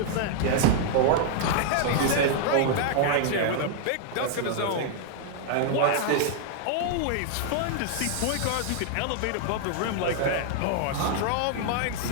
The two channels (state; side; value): different; both; correlation 0.00